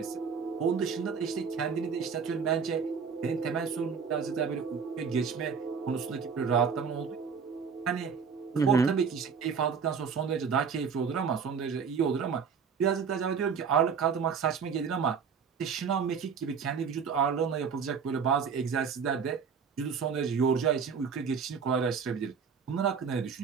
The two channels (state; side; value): quieter; left; 6.2 dB